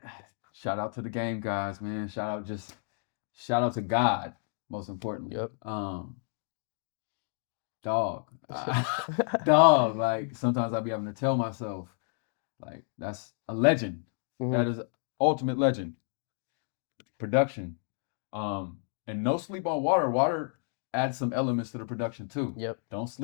shout out to the game guys, man. Shout out to God, most importantly. Yep. Dog. Dog. Like sometimes I be having to tell myself, like, that's a legend. Mhm. That is ultimate legend. Production. And no sleep on water. Water adds some elements to the production too. Yep. Don't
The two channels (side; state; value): right; silent; 57 dB below the other